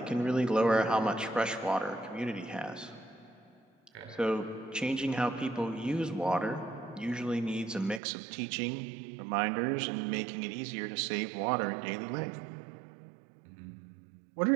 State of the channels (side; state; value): left; drops out; at 8.0 s